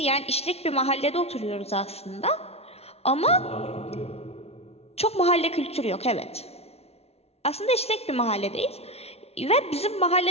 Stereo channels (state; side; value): late; right; 0.30 ms